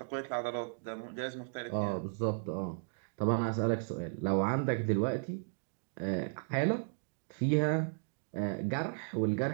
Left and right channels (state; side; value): silent; left; digital silence